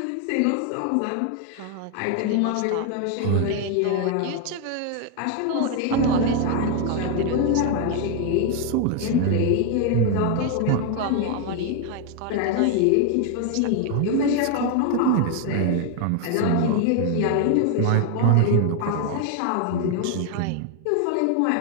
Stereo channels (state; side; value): different; both; correlation 0.00